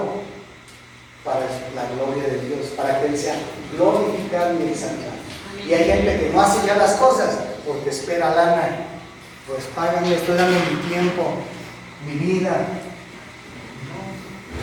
para la gloria de Dios, para que Él sea glorificado y exaltado. Y hay gente que no hace ya las cosas porque espera lana. Pues páganme, estoy dando mi tiempo, mi vida.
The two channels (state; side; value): identical; both; correlation 1.00